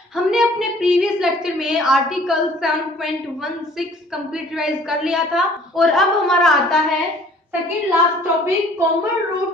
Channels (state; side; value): normal; both; correlation 0.54